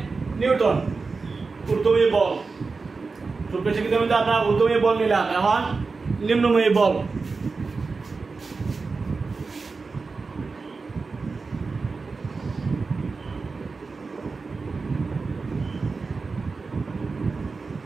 নিউটন ঊর্ধ্বমুখী বল। ছোট শিক্ষিত কিন্তু আমরা ঊর্ধ্বমুখী বল নিলাম, এখন নিম্নমুখী বল।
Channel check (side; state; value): left; quieter; 4.3 dB